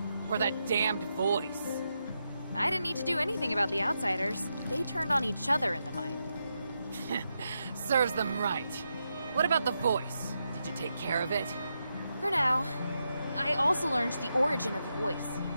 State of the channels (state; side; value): inverted; both; correlation -0.85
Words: Or that damned voice? I didn't need to do anything about the outsiders. They turned on each other in the mine. Serves them right. What about the voice? Did you take care of it? For now. I also learned the origin of the voice.